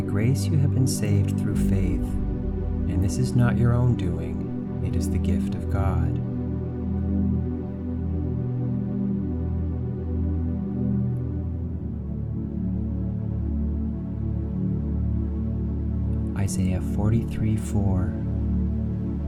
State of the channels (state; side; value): identical; both; correlation 1.00